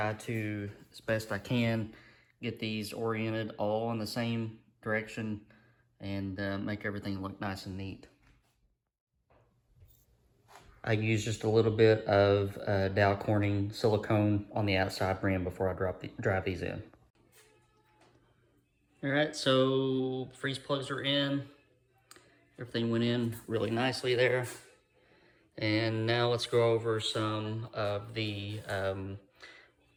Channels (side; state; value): both; identical; correlation 1.00